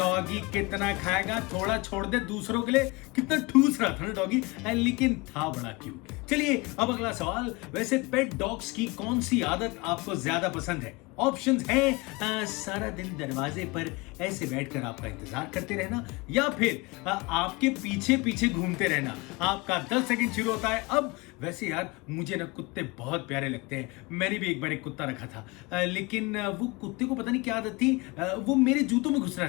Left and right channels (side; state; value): right; quieter; 25.2 dB